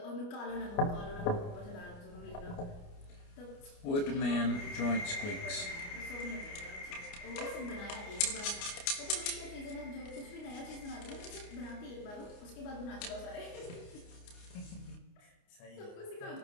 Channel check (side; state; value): right; late; 29 ms